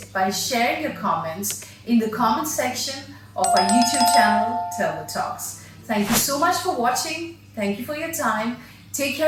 by sharing your comments in the comment section of our YouTube channel Turbo Talks. Thank you so much for watching. Thank you for your time. Take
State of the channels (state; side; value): identical; both; correlation 1.00